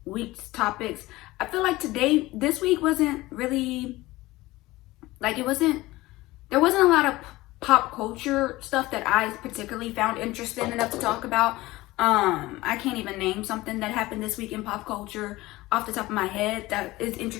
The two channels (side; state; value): right; quieter; 19.0 dB